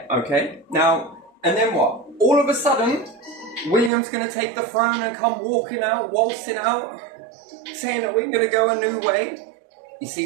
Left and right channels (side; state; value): left; drops out; at 3.9 s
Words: okay? Now, and then what? All of a sudden, William's going to take the throne and come walking out, waltzing out, saying that we're going to go a new way. You